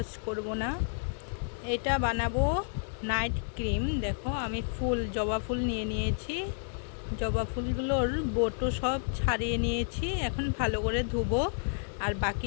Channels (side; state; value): right; silent; digital silence